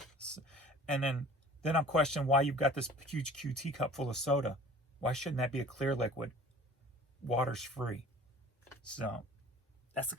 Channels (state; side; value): normal; both; correlation 0.46